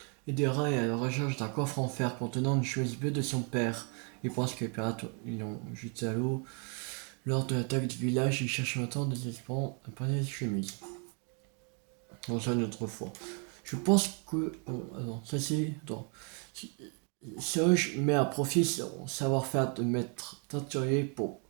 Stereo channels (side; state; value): left; quieter; 38.2 dB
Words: Aidera est à la recherche d'un coffre en fer contenant une chemise bleue de son père. Il pense que les pirates l'ont jeté à l'eau. Lors de l'attaque du village, il cherche maintenant désespérant un panier de chemise. On ça une autre fois. Je pense que... attends, ça c'est... Attends. Serge met à profit son savoir-faire de maître teinturier pour